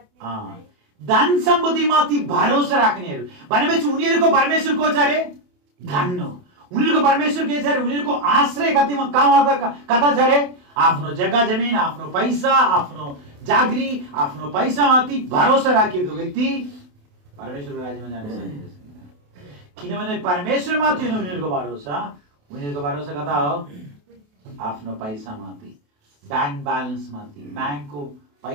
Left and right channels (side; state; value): left; late; 28 ms